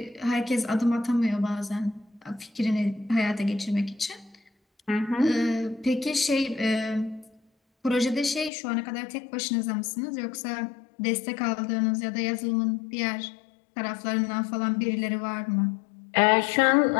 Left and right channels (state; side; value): drops out; right; at 8.5 s